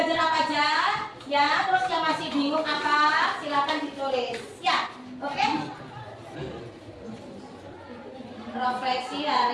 apa aja ya. Terus yang masih bingung apa, silahkan ditulis ya. Oke. Refleksi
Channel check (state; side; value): identical; both; correlation 1.00